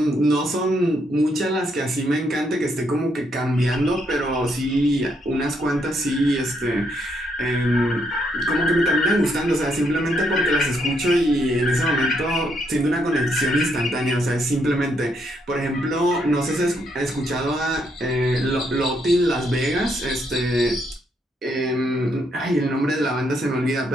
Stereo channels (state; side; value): normal; both; correlation 0.75